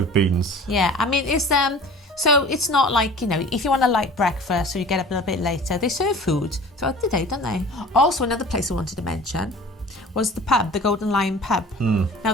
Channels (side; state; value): both; normal; correlation 0.43